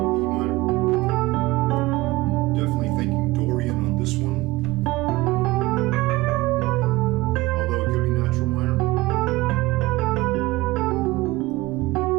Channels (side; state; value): left; quieter; 19.7 dB